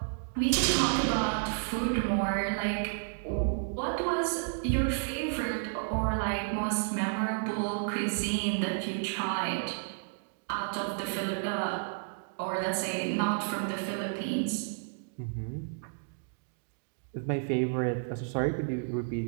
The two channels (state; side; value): silent; left; digital silence